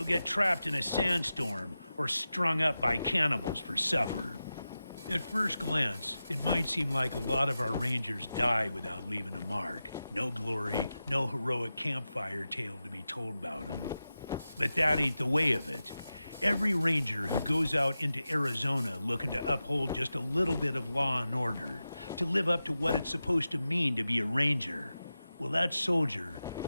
get trapped in a sandstorm or strung up by cannibals for supper. At first glance, it might seem like a lot of our rangers die without leaving a mark. No glory, no heroic campfire tale to be told about them. But that ain't the way of it. Every ranger who goes out into Arizona looking to uphold just a little bit of law and order, to live up to what it's supposed to mean to be a ranger, well, that soldier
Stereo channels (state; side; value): inverted; both; correlation -0.93